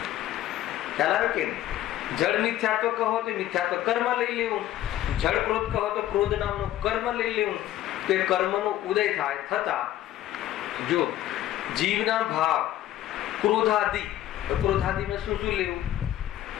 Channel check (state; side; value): quieter; right; 13.4 dB